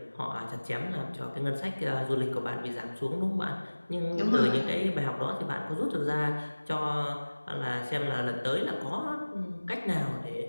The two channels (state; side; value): inverted; both; correlation -1.00